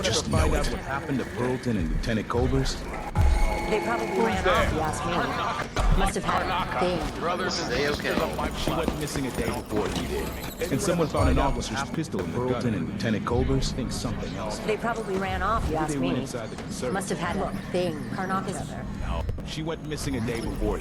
just know it. What happened to Burlton and Lieutenant Colbers? They probably ran off, you ask me. Must have had a thing. They okay? She went missing a day before he did. And someone found an officer's pistol in Burlton and Lieutenant Colbers. Think something else. They probably ran off, you ask They went me. inside the conservatory. Must have had a thing. Karnak is there. No, she went missing a day before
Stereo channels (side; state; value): both; identical; correlation 1.00